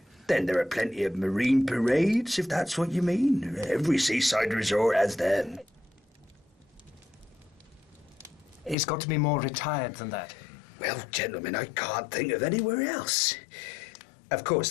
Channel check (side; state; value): right; drops out; at 8.8 s